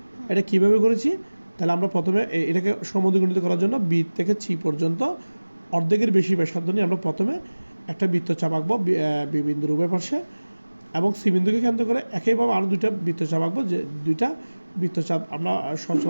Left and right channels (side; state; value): both; inverted; correlation -1.00